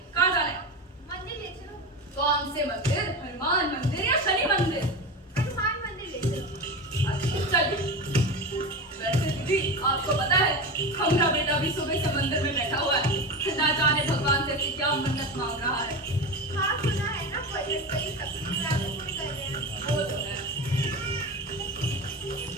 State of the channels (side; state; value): both; normal; correlation 0.23